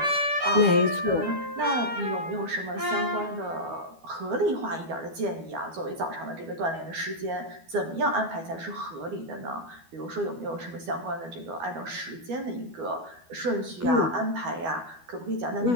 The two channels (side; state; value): left; late; 12 ms